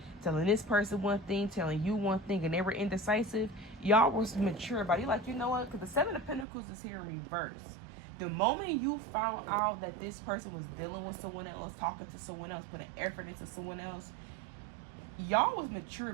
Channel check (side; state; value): left; drops out; at 6.5 s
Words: telling this person one thing, telling you one thing, and they were indecisive. Y'all was mature about it. You're like, you know what? Because the Seven of Pentacles is here in reverse. The moment you found out that this person was dealing with someone else, talking to someone else, putting effort into someone else, y'all was mature